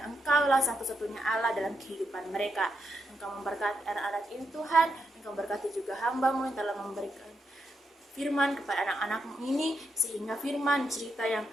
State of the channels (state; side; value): normal; both; correlation 0.82